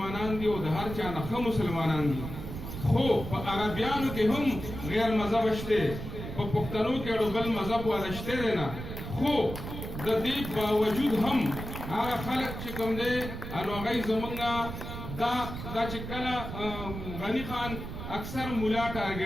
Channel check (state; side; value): noise; right; rumble, 8 dB below the sound